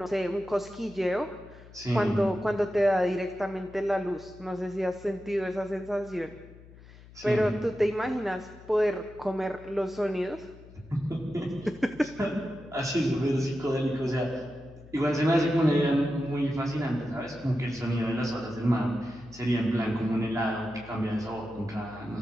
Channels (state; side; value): noise; left; hum, 20 dB below the sound